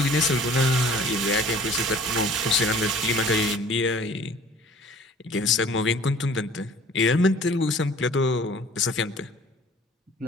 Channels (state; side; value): normal; both; correlation 0.50